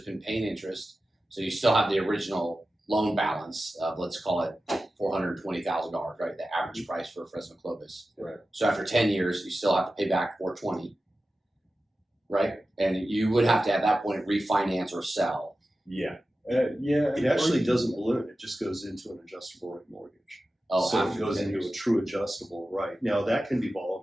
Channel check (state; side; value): normal; both; correlation 0.94